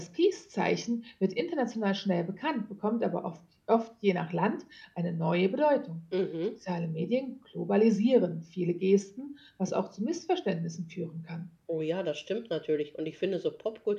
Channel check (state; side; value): identical; both; correlation 1.00